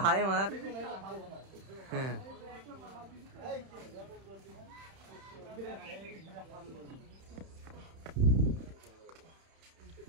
হাই মার। হ্যাঁ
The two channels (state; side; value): late; left; 31 ms